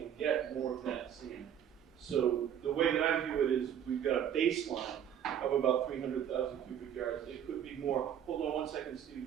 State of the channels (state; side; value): quieter; left; 9.4 dB